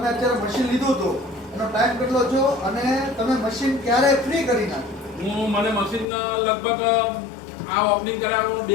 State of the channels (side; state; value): right; drops out; at 6.1 s